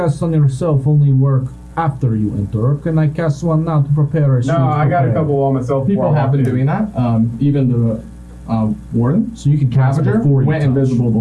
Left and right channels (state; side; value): identical; both; correlation 1.00